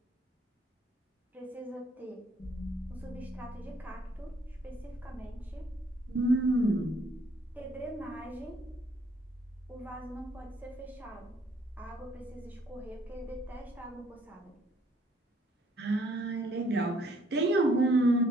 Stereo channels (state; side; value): normal; both; correlation 0.65